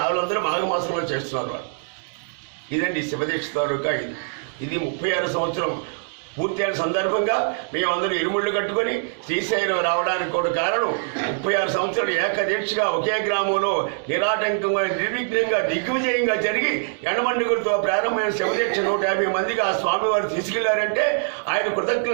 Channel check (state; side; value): silent; left; 63 dB below the other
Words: మాఘమాసంలో చేస్తున్నారు వాళ్ళు. ఇదండి శివదీక్ష తాలూకా. ఇది 36 సంవత్సరం పూర్తయిన సందర్భంగా మేమందరూ ఇరుముళ్ళు కట్టుకొని శ్రీశైలం రావడానికి కూడా కారణం 36 సంవత్సరాలు ఏకదీక్షగా ఒకే గ్రామంలో నిరాటంకంగా నిర్విఘ్నంగా దిగ్విజయంగా జరిగి ఎండమండుగులతో ప్రారంభమైన శివదీక్ష 150 మందికి ఆ స్వామివారు తీసుకెళ్లారంటే ఆయన